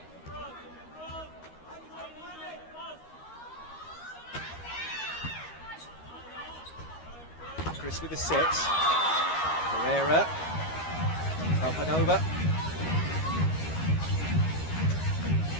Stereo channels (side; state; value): right; late; 13 ms